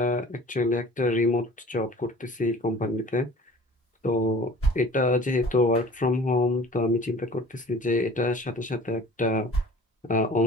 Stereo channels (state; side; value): normal; both; correlation 0.47